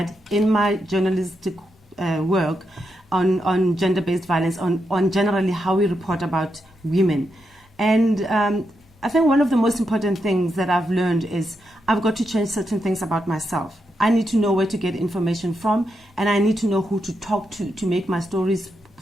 in my journalistic work on gender-based violence, on generally how we report about women. And I think one of the most important things that I've learned is I've got to change certain things about myself. I need to know where to get information from, and I need to know who to talk to make my stories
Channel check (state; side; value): normal; both; correlation 0.84